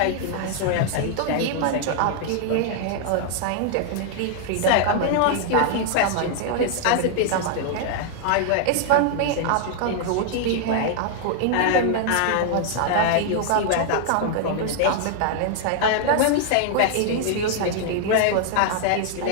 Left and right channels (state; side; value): different; both; correlation 0.00